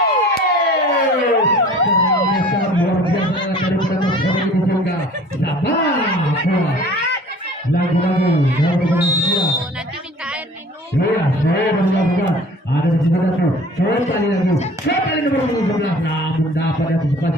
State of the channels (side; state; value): both; normal; correlation 0.47